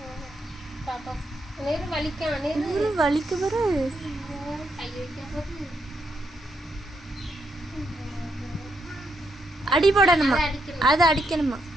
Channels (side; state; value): both; normal; correlation 0.79